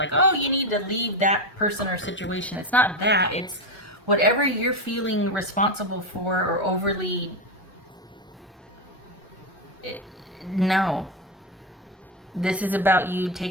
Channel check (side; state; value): both; normal; correlation 0.12